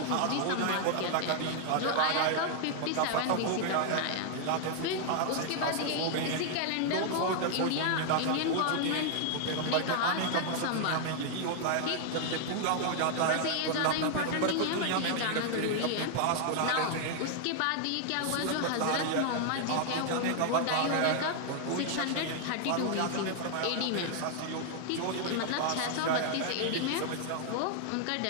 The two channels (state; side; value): different; both; correlation 0.00